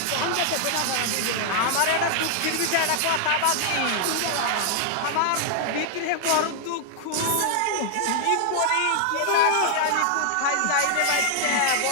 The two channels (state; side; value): different; both; correlation 0.00